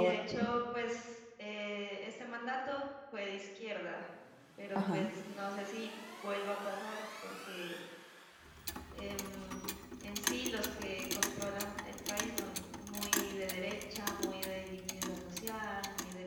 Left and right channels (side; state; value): both; identical; correlation 1.00